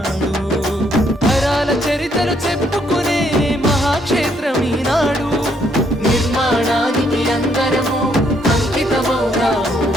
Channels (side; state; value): both; normal; correlation 0.71